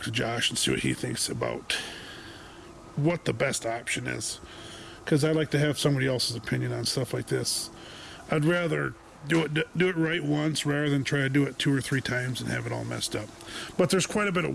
to Josh and see what he thinks about what the best option is, because I like to have somebody else's opinion on stuff like this. I'd rather do it right once rather than try to do it 2 or 3 times and have it all messed up. But there's quite a bit of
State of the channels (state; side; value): identical; both; correlation 1.00